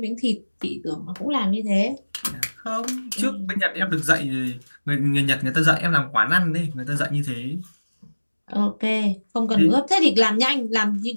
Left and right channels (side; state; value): both; inverted; correlation -1.00